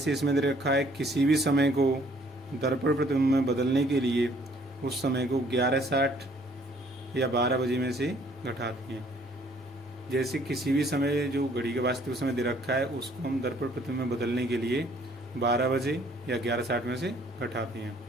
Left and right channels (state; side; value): normal; both; correlation 0.61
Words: इसमें दे रखा है, किसी भी समय को दर्पण प्रतिबिंब में बदलने के लिए उस समय को 11:60 या 12 बजे में से घटाते हैं। जैसे किसी भी समय जो घड़ी का वास्तविक समय दे रखा है उसको हम दर्पण प्रतिबिंब में बदलने के लिए 12 बजे या 11:60 में से घटाते हैं।